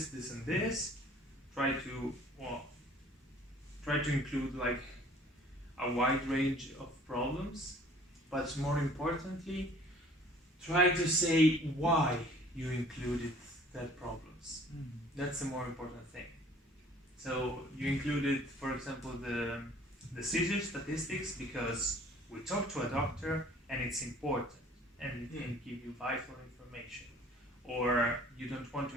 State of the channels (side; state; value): both; normal; correlation 0.53